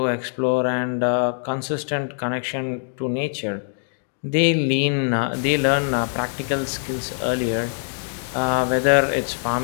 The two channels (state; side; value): silent; right; 64 dB below the other